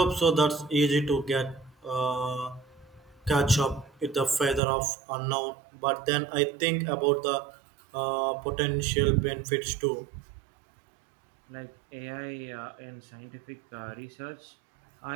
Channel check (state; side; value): drops out; left; at 4.6 s